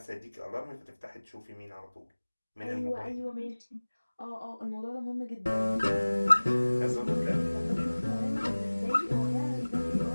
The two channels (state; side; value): inverted; both; correlation -1.00